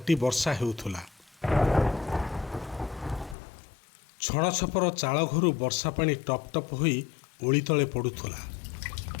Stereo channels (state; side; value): drops out; right; at 3.4 s